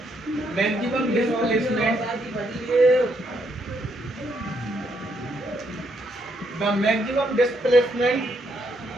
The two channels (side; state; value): both; normal; correlation 0.75